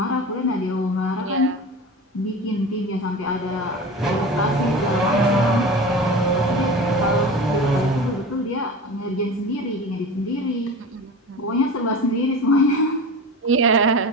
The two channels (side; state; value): both; normal; correlation 0.32